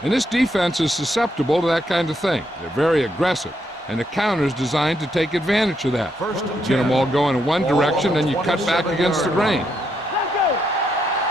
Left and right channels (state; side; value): normal; both; correlation 0.78